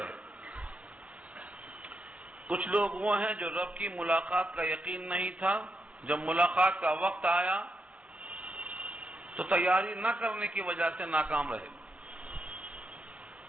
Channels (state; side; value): late; left; 0.064 ms